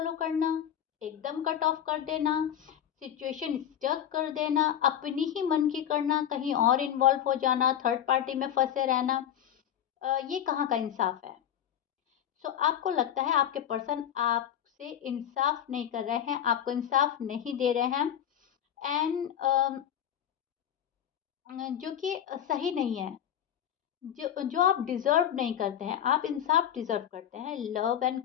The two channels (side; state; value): right; quieter; 10.1 dB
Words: करना, एकदम कट ऑफ कर देना, सिचुएशन स्टक कर देना, अपनी ही मन की करना, कहीं और इन्वॉल्व हो जाना, थर्ड पार्टी में फंसे रहना, ये कहाँ का इंसाफ है? सो आपको लगता है आपके पर्सन आपसे इंसाफ नहीं कर रहे हैं, आपको इंसाफ नहीं दे रहे हैं, एंड जो कि सही नहीं है। जो जो आप डिज़र्व नहीं करते हैं, आप इंसाफ डिज़र्व करते हैं, लव एंड